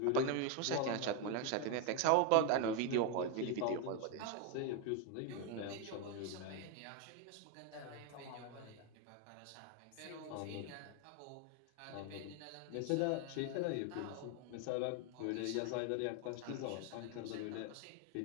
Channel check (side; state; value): both; different; correlation 0.01